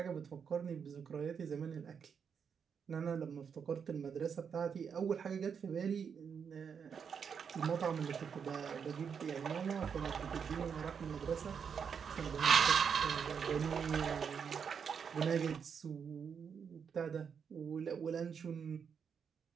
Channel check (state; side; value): quieter; left; 6.8 dB